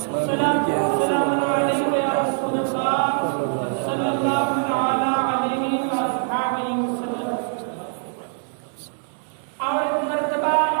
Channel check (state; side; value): silent; left; 58 dB below the other